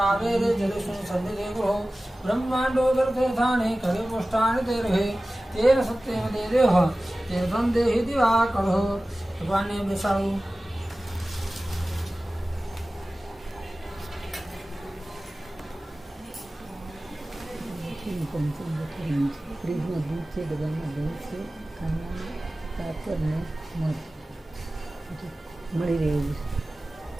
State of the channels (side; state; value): both; normal; correlation 0.97